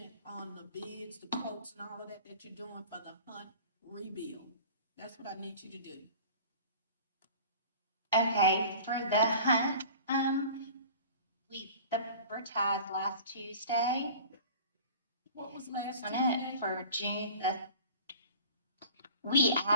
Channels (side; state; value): both; inverted; correlation -0.42